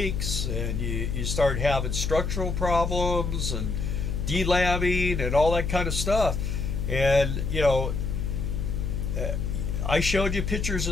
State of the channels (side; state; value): left; noise; hum, 2 dB below the sound